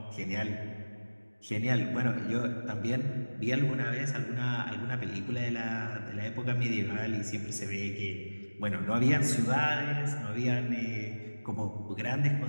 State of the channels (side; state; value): both; inverted; correlation -1.00